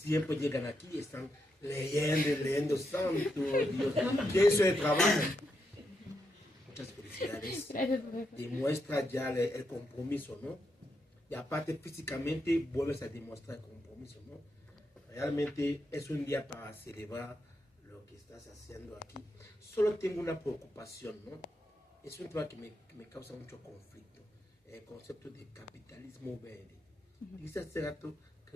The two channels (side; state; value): both; normal; correlation 0.83